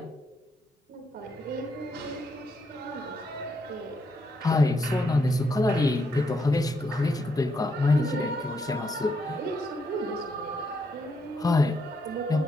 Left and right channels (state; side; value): normal; both; correlation 0.77